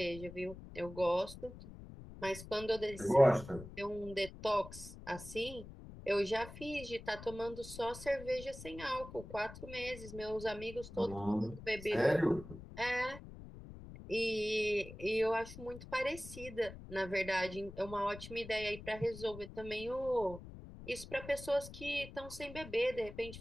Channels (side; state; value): left; noise; rumble, 14 dB below the sound